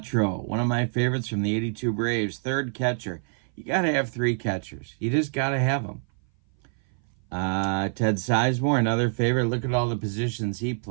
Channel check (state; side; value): silent; left; 58 dB below the other